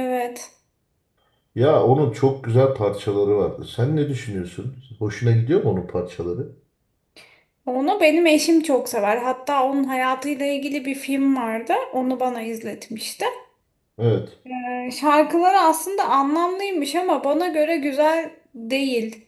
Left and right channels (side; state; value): both; identical; correlation 1.00